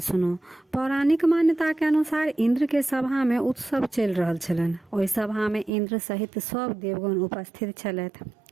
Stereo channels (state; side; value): drops out; left; at 5.7 s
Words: पौराणिक मान्यता के अनुसार इंद्र के सभा में उत्सव चल रहल छलनि। ओहि सभा में इंद्र सहित सब देवगण उपस्थित छलथि।